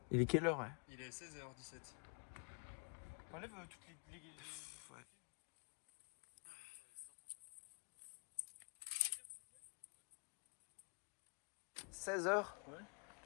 Il est quelle heure, ouais? Il est 16h17. On enlève toutes les... Ouais. « 16h. Ouais.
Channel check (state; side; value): quieter; right; 37.4 dB